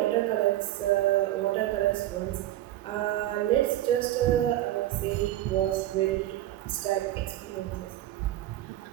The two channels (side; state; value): left; quieter; 14.2 dB